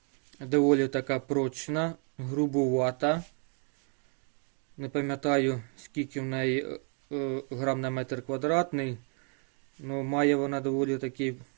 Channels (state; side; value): quieter; left; 39.5 dB